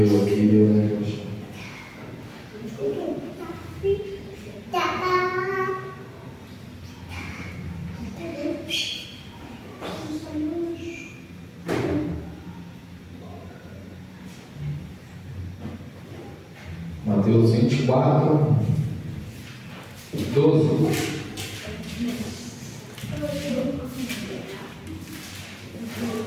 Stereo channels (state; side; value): identical; both; correlation 1.00